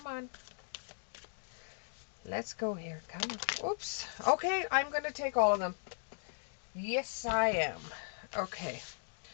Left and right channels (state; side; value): silent; right; digital silence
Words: on. Let's go here. Come on. Oops. Okay, I'm going to take all of them. Yes, I am. Okay.